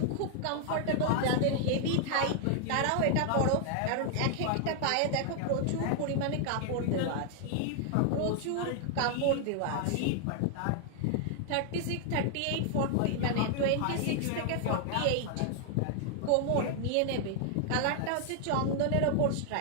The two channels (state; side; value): different; both; correlation 0.00